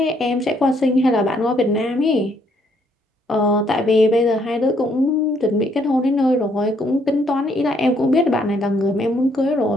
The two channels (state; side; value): normal; both; correlation 0.69